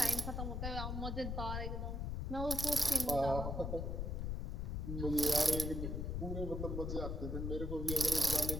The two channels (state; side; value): noise; left; rumble, 2 dB below the sound